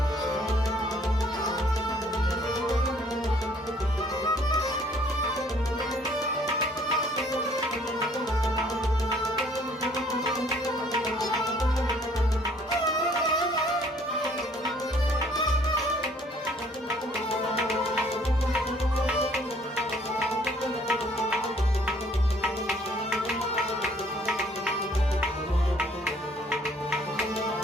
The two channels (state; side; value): normal; both; correlation 0.60